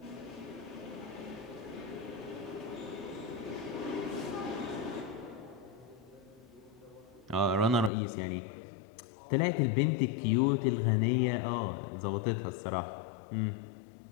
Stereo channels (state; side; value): drops out; right; at 7.9 s